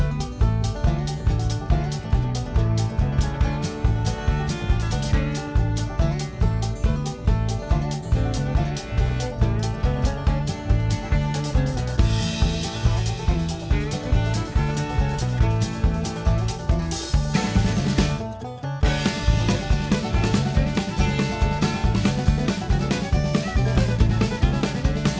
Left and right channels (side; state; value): both; identical; correlation 1.00